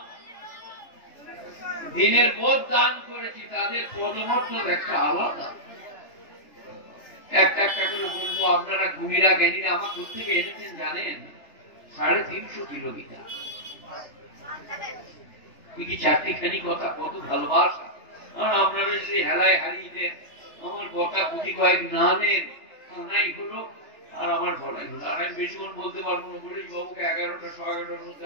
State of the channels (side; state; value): right; late; 3.3 ms